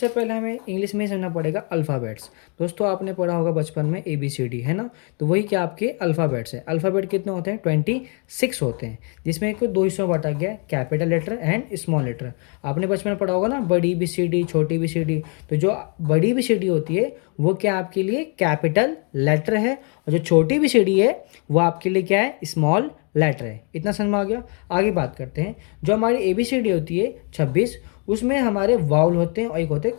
पहले हमें इंग्लिश में ही समझना पड़ेगा अल्फ़ाबेट्स। दोस्तों, आपने पढ़ा होगा बचपन में ABCD, है ना। तो वही क्या आपके अल्फ़ाबेट्स हैं। अल्फ़ाबेट कितने होते हैं? 26 होते हैं, जिसमें एक दो हिस्सों में बांटा गया है, capital letter and small letter. आपने बचपन में पढ़ा होगा ना, बड़ी BCD, छोटी BCD। तो जो बड़ी BCD होती है वो क्या आपके लिए कैपिटल लेटर है, और जो छोटी BCD है वो आपके लिए क्या है? स्मॉल लेटर है। इतना समझ में आ गया। आगे बात करते हैं। जो हमारी ABCD होती है 26, उसमें हमारे वाउल होते हैं और एक होते हैं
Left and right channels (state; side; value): quieter; right; 37.4 dB